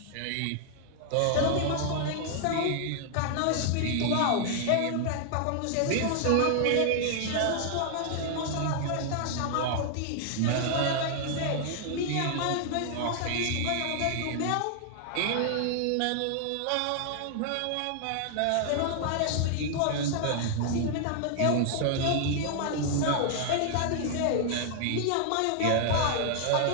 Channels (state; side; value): different; both; correlation 0.00